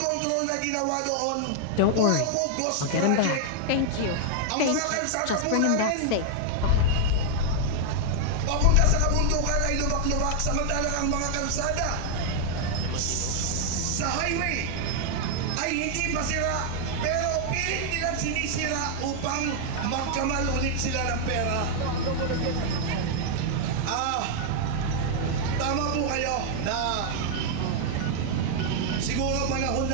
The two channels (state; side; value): different; both; correlation 0.00